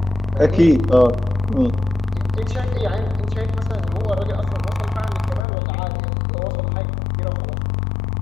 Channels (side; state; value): right; drops out; at 5.5 s